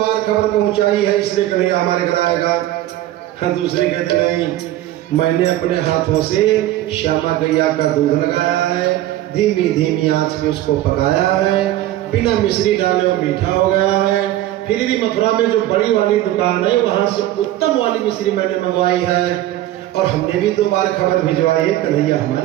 खबर पहुंचाई है, इसलिए कन्हैया हमारे घर आएगा। दूसरी कहती नहीं, मैंने अपने हाथों से श्यामा गैया का दूध लगाया है, धीमी धीमी आंच पे उसको पकाया है, बिना मिश्री डाले और मीठा हो गया है। फिर भी मथुरा में जो बड़ी वाली दुकान है वहां से उत्तम वाली मिश्री मैंने मंगवाई है और हमने भी 2 बार खबर भिजवाई है, कन्हैया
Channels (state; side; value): quieter; left; 14.3 dB